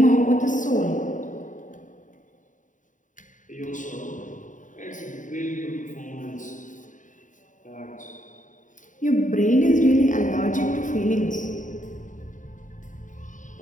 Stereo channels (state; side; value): late; right; 0.37 ms